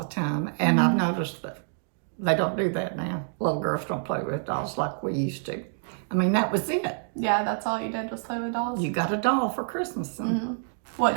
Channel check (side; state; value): left; silent; digital silence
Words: time, and I've noticed that they don't do that now. Little girls don't play with dolls like we used to. I mean, that was it. Yeah, that's all you did was play with dolls? You got a doll for Christmas. And, What